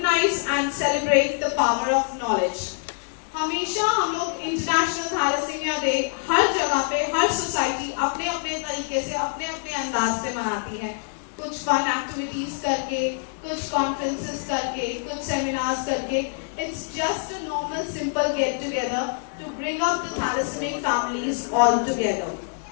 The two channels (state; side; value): silent; right; digital silence